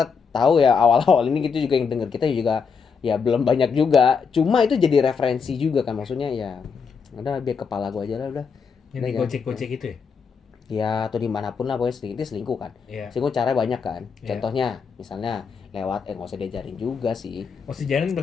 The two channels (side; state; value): right; quieter; 5.8 dB